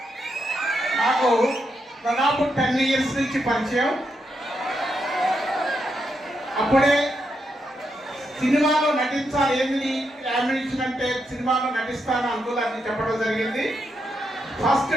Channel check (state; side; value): normal; both; correlation 0.82